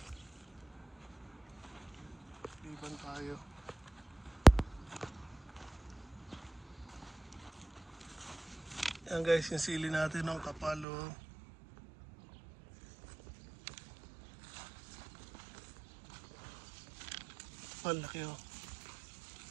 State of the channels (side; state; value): left; drops out; at 10.9 s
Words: Liban tayo. Yan guys, yung sili natin ng kapalo. Malaki oh.